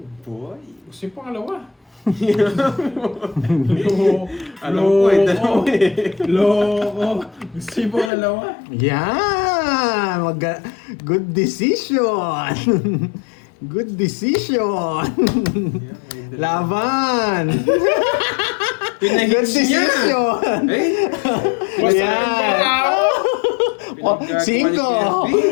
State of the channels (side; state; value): right; drops out; at 8.1 s